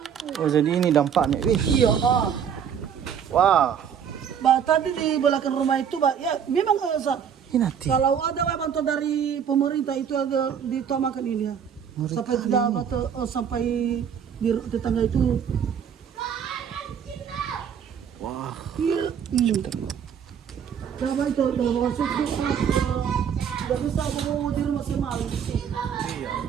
Oh jadi ini dampaknya. Wih. Iya. Wah. Tadi di belakang rumah itu, ya memang Ini nanti. kalau ada bantuan dari pemerintah itu ada ditamakan ini ya. Sampai tidak sampai di tetangga itu. Wah. Iya. Berapa itu? Dalam waktu itu tidak bisa aku di rumah semalam. Iya.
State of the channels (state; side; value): quieter; left; 7.9 dB